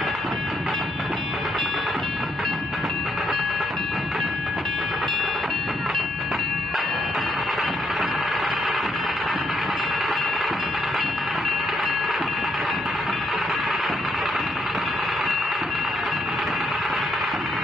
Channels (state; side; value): normal; both; correlation 0.74